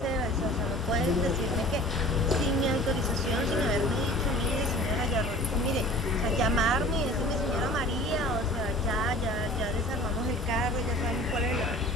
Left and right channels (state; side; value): normal; both; correlation 0.44